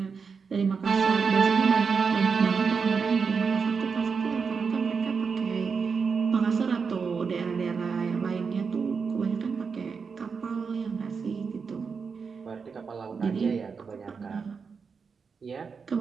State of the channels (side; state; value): left; quieter; 5.5 dB